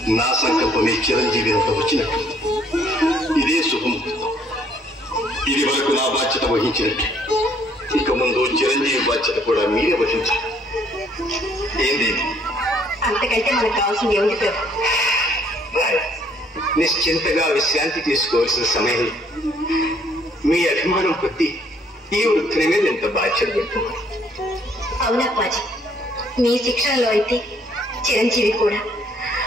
నా సంకల్పమే చిరంజీవి అంత వచ్చినట్టు. ఇదే శుభముహూర్తం. ఇది వరకు నా బాధ్యత వహించినట్టు ఇక ముందు చిరంజీవి బాధ్యత కూడా మీరే వహించాలి. ఏంది? అంతకంటే మనకు కావాల్సింది ఏమిటి పేరు? నిశ్చింతగా విశ్రాంతి తీసుకోవాల్సిన సమయం. మీ అభిమానం కొద్దీ ఈ వృత్తిని మీద ఎంత బాధ్యత పెడుతున్నారు. అవునప్పాజీ, మీ శిక్షణలో అయితే చిరంజీవి కూడా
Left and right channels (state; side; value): normal; both; correlation 0.64